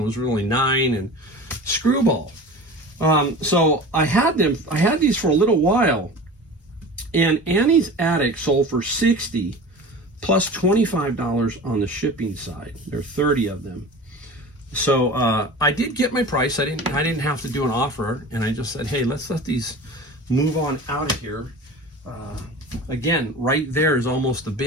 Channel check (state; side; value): normal; both; correlation 0.36